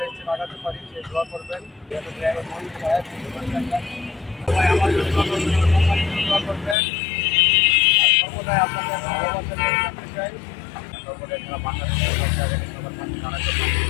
স্টেপ আগাতে পারি সেই দোয়া করবেন। ড্রাইভার মহিন সাহেব, সবাই আমার জন্য দোয়া করবেন, আমার কোম্পানির জন্য দোয়া করবেন। আর সর্বদাই আপনাদের ভালোবাসা নিয়ে থাকতে চাই। সর্বদাই যারা বাংলাদেশের সবার কাছে জানাতে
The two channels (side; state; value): right; drops out; at 6.8 s